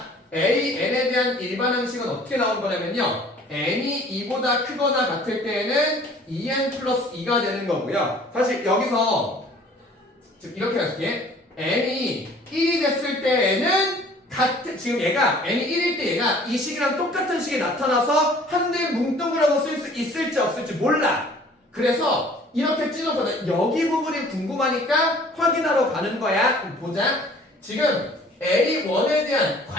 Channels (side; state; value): both; normal; correlation 0.52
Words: n에 대한 일반 항식은 어떻게 나온 거냐면요. n이 2보다 크거나 같을 때에는 2n 플러스 2가 되는 거고요. 사실 여기서 지금 이렇게 할게. n이 1이 됐을 때에는 지금 얘가 n이 1일 때 얘가 이 식이랑 똑같은 식이 나타나서 한대 뭉뚱그려서 쓸 수 있을지 없을지 몰라. 그래서 이렇게 찢어서 여기 부분이 궁금하니까 확인하러 가는 거야. 그럼 보자. 지금 A1에 대한